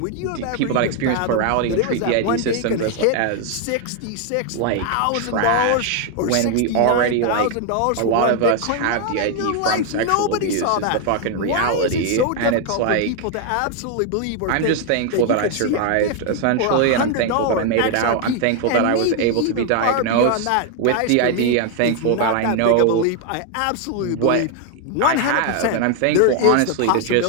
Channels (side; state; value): both; different; correlation 0.01